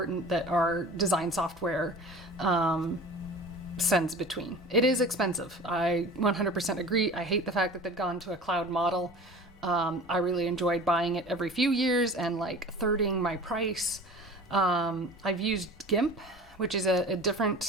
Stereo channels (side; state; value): both; normal; correlation 0.39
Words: that our design software sends between. It is expensive. I 100% agree. I hate the fact that they've gone to a cloud model. I really enjoyed buying it every few years and like thirding my price. I've used GIMP, which is a